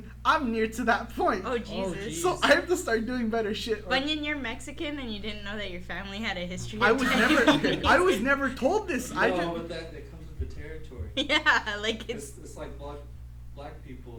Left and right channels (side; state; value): both; identical; correlation 1.00